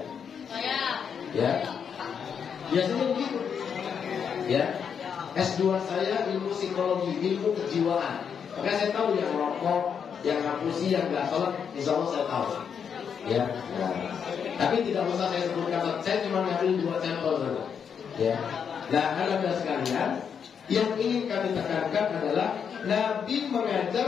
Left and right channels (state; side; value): quieter; right; 7.2 dB